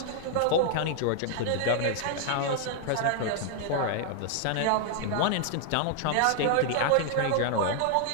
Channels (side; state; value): both; different; correlation 0.00